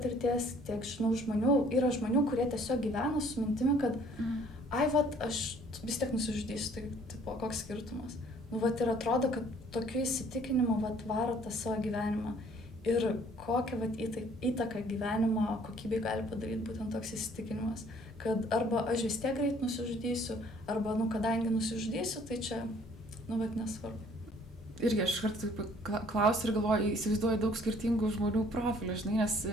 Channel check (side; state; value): both; normal; correlation 0.58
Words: tiek žinau žmonių, yra žmonių, kurie tiesiog gyvena su mintimi, kad aš vis tiek nusižudysiu, tai tipo, koks skirtumas. Ir atrodo, kad tokiu įsitikinimu varo tą savo gyvenimą. Ir kokią įtaką gyvenimo kokybei gali padaryti būtent toks įsitikinimas, kad arba aš vis tiek greit nusižudysiu, arba, kadangi nusižudysiu, tai čia, nesvarbu. Irgi aš kartu klausiu ir galvoju, įsivaizduoju daug skirtingų žmonių profilių, žinai, nes